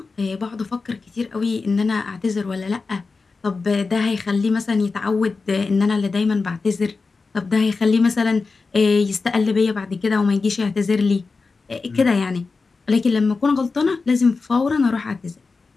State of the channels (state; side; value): quieter; right; 4.2 dB